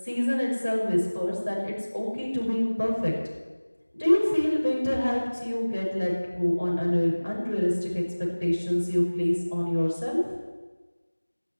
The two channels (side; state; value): both; inverted; correlation -1.00